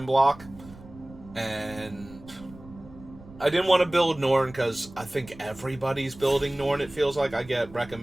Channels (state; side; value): noise; right; rumble, 19 dB below the sound